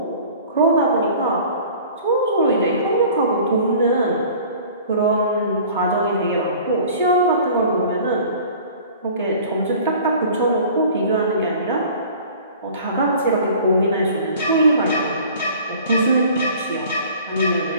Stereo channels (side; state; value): both; inverted; correlation -0.46